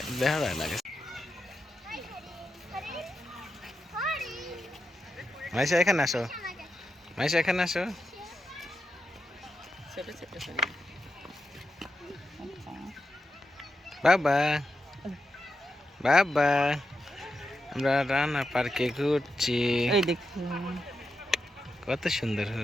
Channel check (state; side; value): normal; both; correlation 0.87